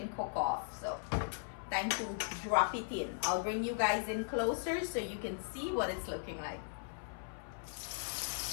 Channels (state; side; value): silent; right; 52 dB below the other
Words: cook off. So time to drop it in. I'll bring you guys in closer so you can see what it's looking like.